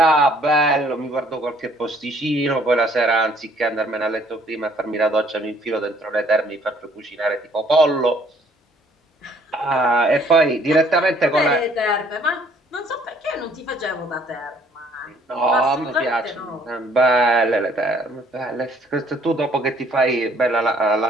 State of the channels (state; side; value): normal; both; correlation 0.61